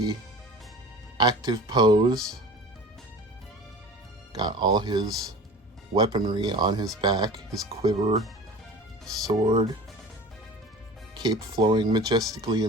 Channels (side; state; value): both; normal; correlation 0.39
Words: active pose. Got all his weaponry on his back, his quiver, sword, cape flowing majestically